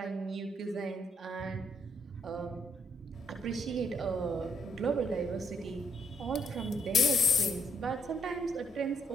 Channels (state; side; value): normal; both; correlation 0.72